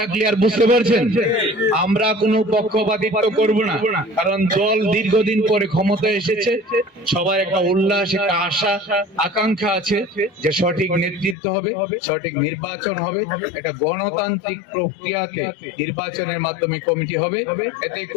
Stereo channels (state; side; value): drops out; right; at 11.4 s